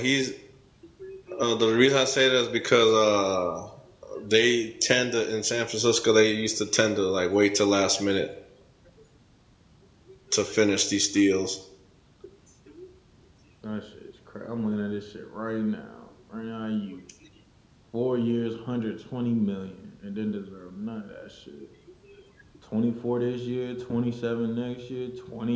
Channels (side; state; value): both; identical; correlation 1.00